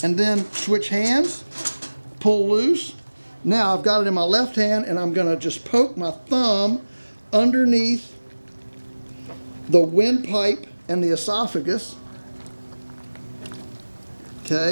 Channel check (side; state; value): both; inverted; correlation -1.00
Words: And then switch hands, pull loose. Now I've got it in my left hand and I'm gonna just poke my thumb underneath the windpipe and the esophagus.